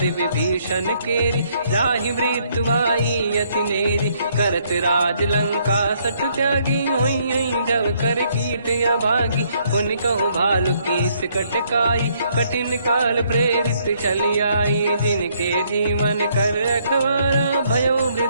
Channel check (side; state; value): both; inverted; correlation -0.69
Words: विभीषण केरी जाहि मृत्यु आई यति नेरी करत राज लंका सठ त्यागी हुई जब कर कीट अभागी उन कहूँ भालु कीस कटकाई कठिन काल प्रेरित चली आई जिनके जीवन कर रखवारा भयो